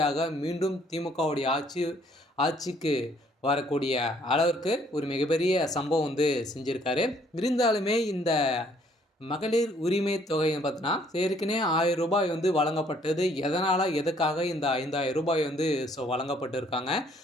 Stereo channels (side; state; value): both; normal; correlation 0.64